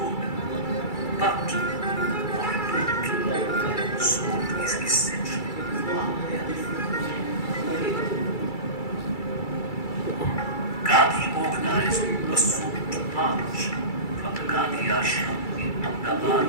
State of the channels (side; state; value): right; late; 2.3 ms